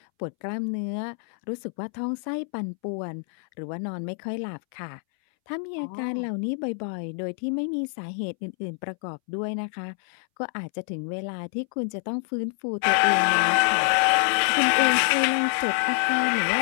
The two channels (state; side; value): silent; right; 61 dB below the other